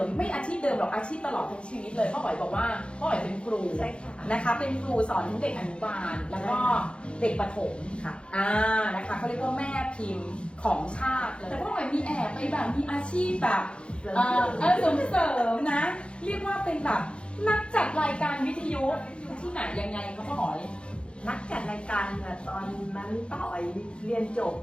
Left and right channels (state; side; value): late; right; 0.057 ms